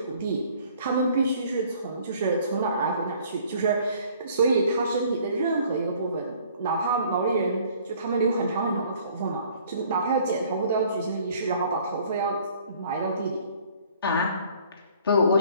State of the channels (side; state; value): both; inverted; correlation -0.57